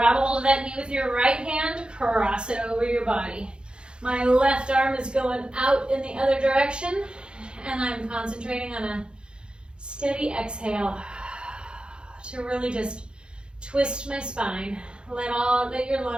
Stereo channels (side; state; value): left; late; 0.052 ms